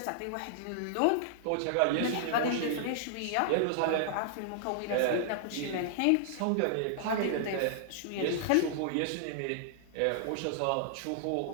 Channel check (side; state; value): both; different; correlation -0.01